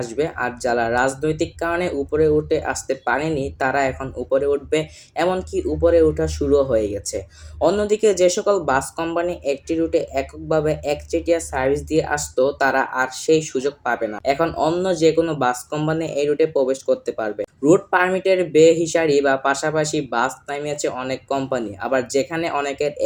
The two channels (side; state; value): both; identical; correlation 1.00